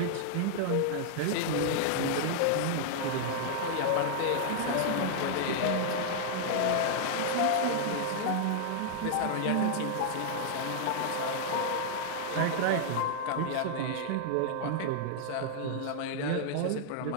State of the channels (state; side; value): different; both; correlation 0.00